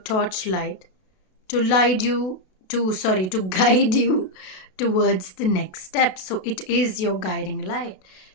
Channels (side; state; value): right; late; 32 ms